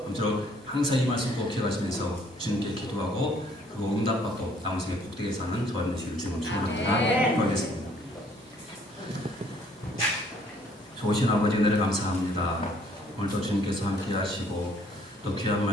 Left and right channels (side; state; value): both; normal; correlation 0.62